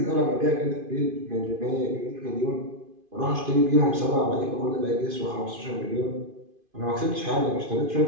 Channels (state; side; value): late; left; 2.5 ms